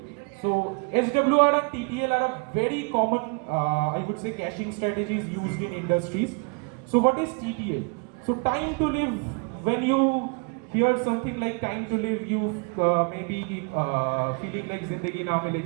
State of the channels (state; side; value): quieter; left; 33.9 dB